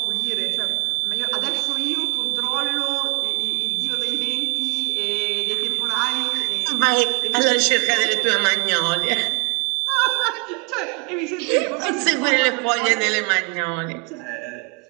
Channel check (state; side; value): quieter; left; 31.8 dB